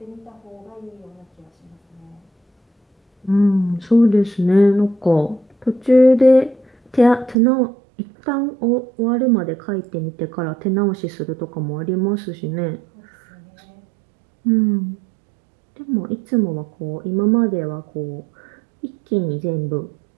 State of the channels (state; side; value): drops out; left; at 7.4 s